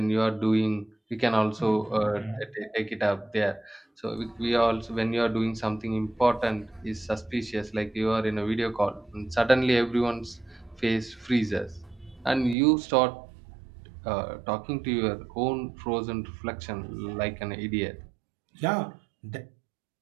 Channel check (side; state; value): left; drops out; at 12.6 s